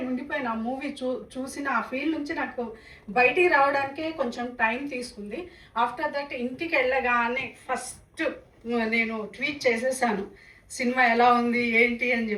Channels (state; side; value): identical; both; correlation 1.00